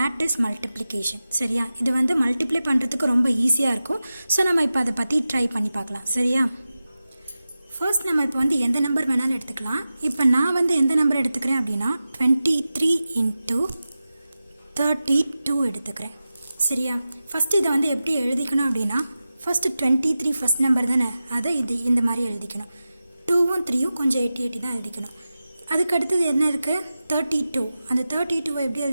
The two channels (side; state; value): both; inverted; correlation -0.94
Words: multiplication. சரியா, இது வந்து மல்டிப்ளை பண்ணுறதுக்கு ரொம்ப ஈஸியாக இருக்கும். ஸோ நம்ம இப்போ அதை பற்றி ட்ரை பண்ணி பார்க்கலாம். சரியா, ஃபர்ஸ்ட் நம்ம இப்போ வந்து எந்த நம்பர் வேணாலும் எடுத்துக்கலாம். இப்போ நான் வந்து எந்த நம்பர் எடுத்துக்கிறேன் அப்படின்னா 23 × 32 எடுத்துக்கிறேன். சரியா, ஃபஸ்ட்டு இதை வந்து எப்படி எழுதிக்கணும் அப்படின்னா, ஃபஸ்ட்டு 23 ஃபஸ்ட் நம்பர் தானே, அதை இந்த மாதிரி எழுதிக்கணும். 2ம் 3ம் கொஞ்சம் 80 தான் எழுதிக்கணும். அதுக்கு அடுத்தது என்ன இருக்குது, 32. அந்த 32 எப்படி